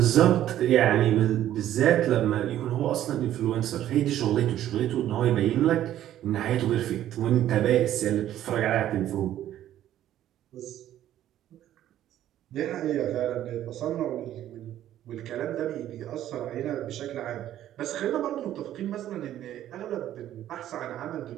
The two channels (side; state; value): left; quieter; 12.2 dB